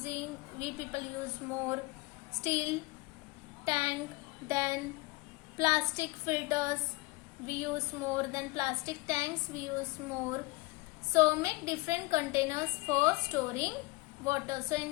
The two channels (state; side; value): quieter; right; 24.1 dB